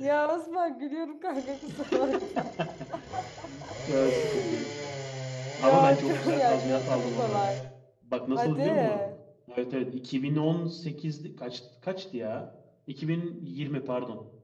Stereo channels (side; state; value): both; identical; correlation 1.00